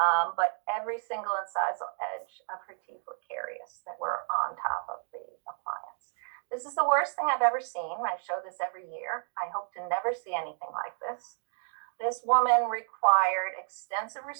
But every single incisal edge of her teeth were carious that were on top of the appliance. This is the worst thing I've ever seen. I show this every year. I hope to never see anything like this. This woman required extensive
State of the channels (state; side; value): silent; left; 57 dB below the other